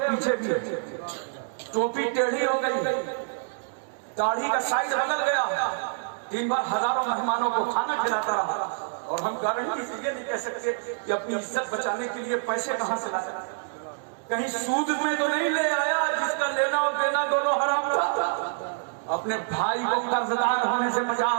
भी है, टोपी टेढ़ी हो गई है, दाढ़ी का साइड बदल गया, दिन भर हजारों मेहमानों को खाना खिलाता रहा। और हम गारंटी से ये नहीं कह सकते कि अपनी इज्जत बचाने के लिए पैसे कहां से लाया, कहीं सूद में तो नहीं ले आया जिसका लेना और देना दोनों हराम था। अपने भाई को कर्जदार होने से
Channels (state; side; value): silent; left; digital silence